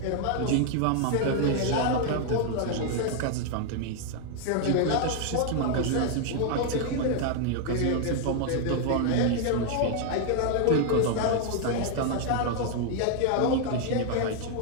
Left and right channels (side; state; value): both; different; correlation 0.00